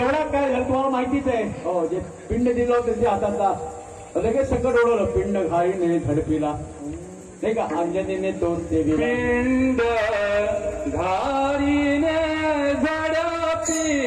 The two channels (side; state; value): both; identical; correlation 1.00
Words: काय झालं तुम्हाला माहितीच आहे. हो, जे पिंड दिलं होतं त्याच्या हातातला लगेच सगळं ओढवलं. पिंड घाईने झडपीला, नाही का, अंजनीने तोच ते पिंड घाईने